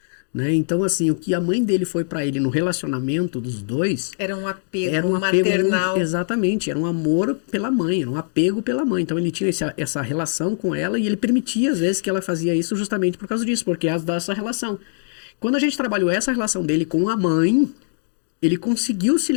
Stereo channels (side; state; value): right; silent; digital silence